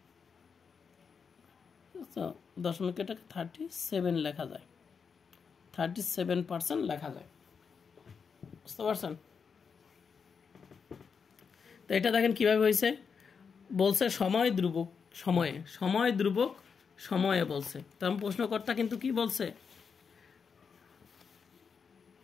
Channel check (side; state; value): right; quieter; 6.0 dB